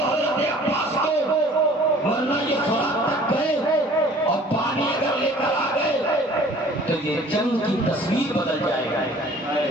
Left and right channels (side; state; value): both; normal; correlation 0.50